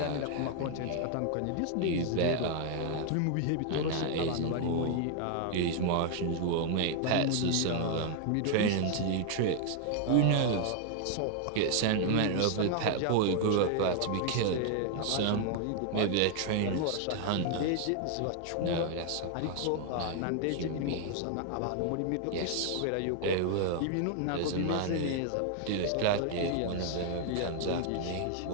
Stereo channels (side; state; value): both; different; correlation 0.00